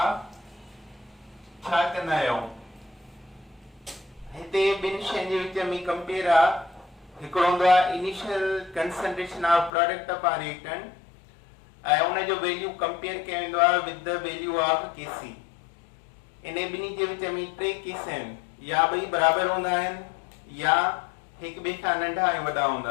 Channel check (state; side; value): drops out; right; at 9.7 s